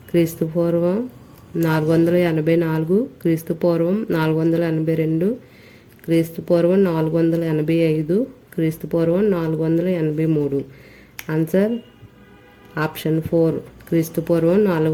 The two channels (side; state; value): both; identical; correlation 1.00